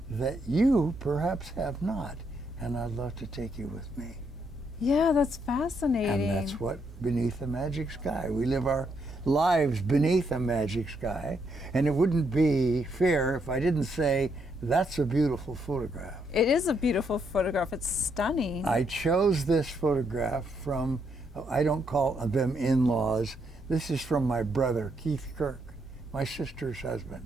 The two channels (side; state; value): both; normal; correlation 0.76